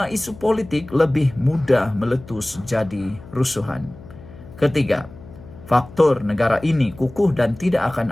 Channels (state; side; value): noise; left; hum, 18 dB below the sound